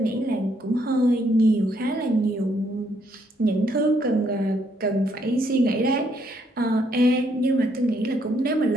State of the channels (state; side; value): normal; both; correlation 0.72